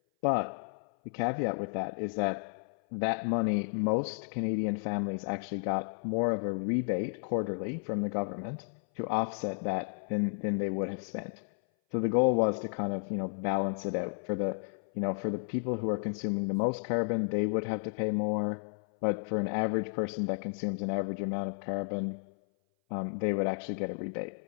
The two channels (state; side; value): silent; right; 56 dB below the other